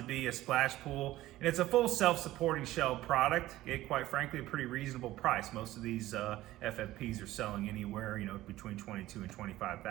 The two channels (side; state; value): left; quieter; 15.9 dB